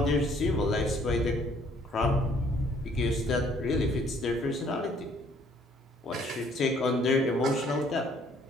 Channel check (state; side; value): normal; both; correlation 0.61